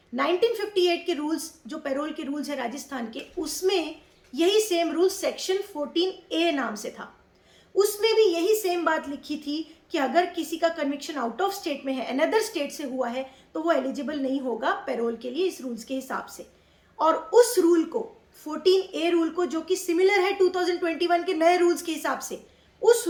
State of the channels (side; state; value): both; identical; correlation 1.00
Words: 1958 के रूल्स जो पैरोल के रूल्स है राजस्थान के, उसमें यही सेम रूल सेक्शन 14A नाम से था। उसमें भी यही सेम बात लिखी थी कि अगर किसी का कन्विक्शन आउट ऑफ स्टेट में है, अनदर स्टेट से हुआ है, तो वो एलिजिबल नहीं होगा पैरोल के लिए इस रूल्स के हिसाब से। और उस रूल को, 14A रूल को, जो कि सिमिलर है 2021 के नए रूल्स के हिसाब से, उस